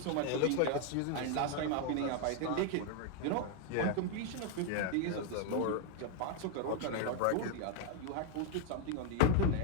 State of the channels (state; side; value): different; both; correlation 0.00